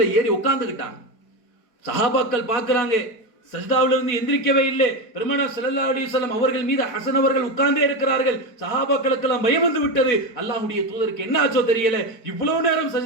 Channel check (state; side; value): late; right; 4.5 ms